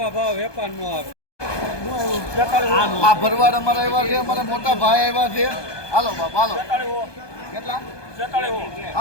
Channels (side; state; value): right; late; 1.2 ms